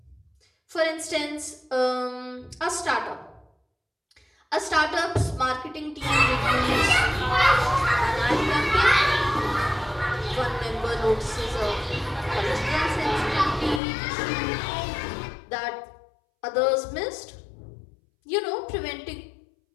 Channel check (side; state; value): right; drops out; at 13.8 s